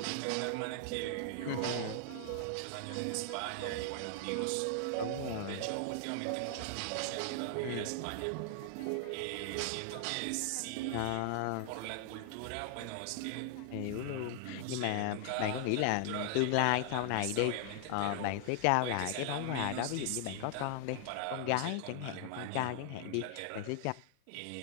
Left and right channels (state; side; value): different; both; correlation 0.00